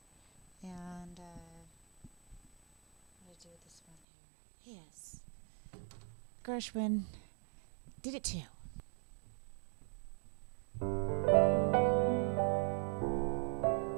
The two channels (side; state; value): left; drops out; at 4.0 s